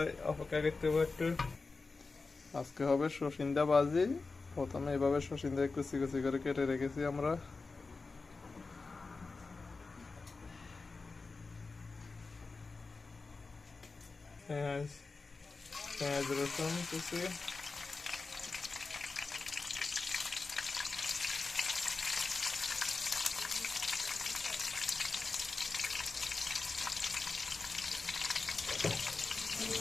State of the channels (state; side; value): quieter; right; 4.1 dB